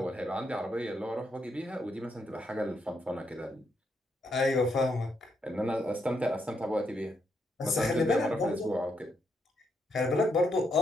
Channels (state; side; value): normal; both; correlation 0.78